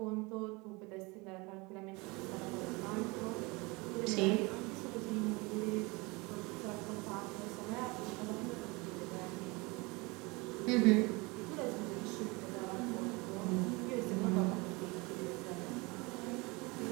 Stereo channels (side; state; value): left; quieter; 25.7 dB